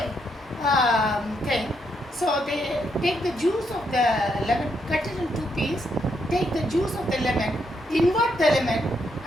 thing. So they take the juice of the lemon, cut it in 2 pieces, take the juice of the lemon, invert the lemon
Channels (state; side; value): normal; both; correlation 0.78